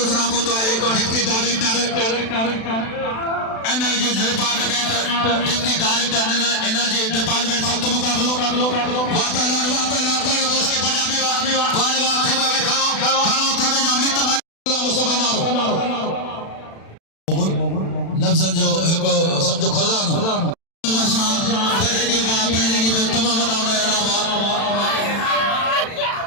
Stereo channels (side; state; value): right; late; 36 ms